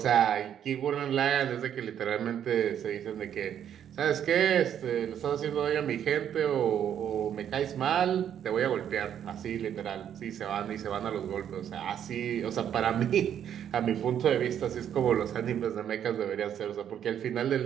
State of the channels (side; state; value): left; quieter; 9.5 dB